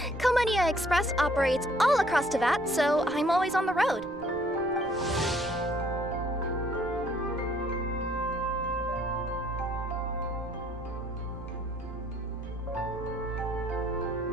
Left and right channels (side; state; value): right; noise; rumble, 19 dB below the sound